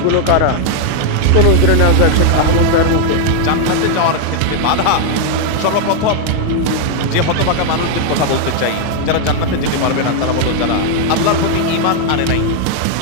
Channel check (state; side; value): different; both; correlation 0.00